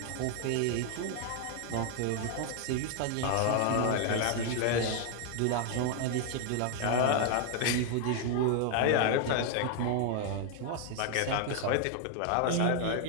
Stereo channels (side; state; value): both; different; correlation 0.00